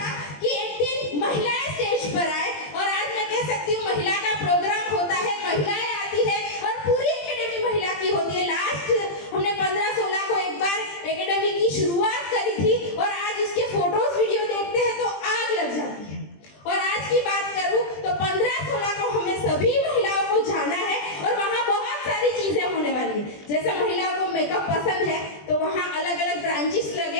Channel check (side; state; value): right; late; 20 ms